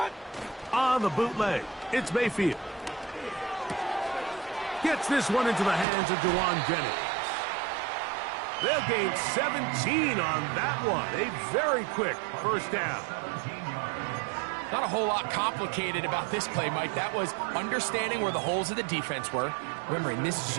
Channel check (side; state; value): left; drops out; at 5.9 s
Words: On the the bootleg. It's Mayfield. Gets this one into the hands of Dewan Jennings. They'll gain 17 on that one. A very quick first down. Not a whole lot complicated about this play, Mike. That was understanding where the holes of the defense were. Remember, in this